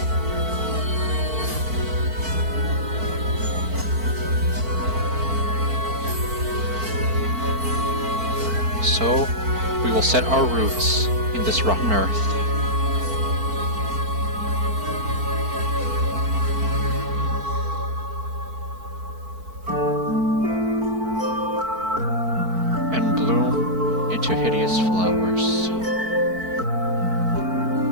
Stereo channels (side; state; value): left; late; 4.5 ms